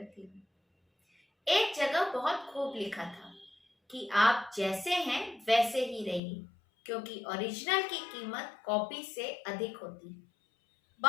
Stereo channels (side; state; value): right; drops out; at 6.2 s